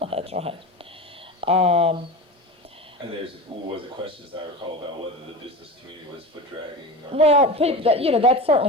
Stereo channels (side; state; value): both; normal; correlation 0.28